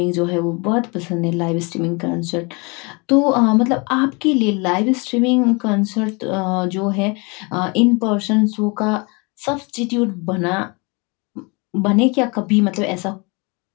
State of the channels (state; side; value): quieter; right; 29.5 dB